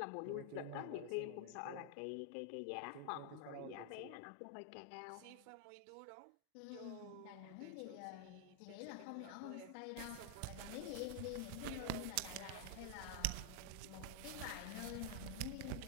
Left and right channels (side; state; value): both; different; correlation 0.00